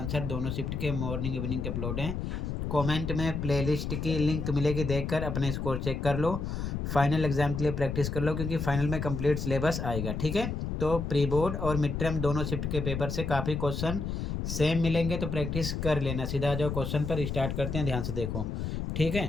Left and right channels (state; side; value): noise; left; rumble, 3 dB below the sound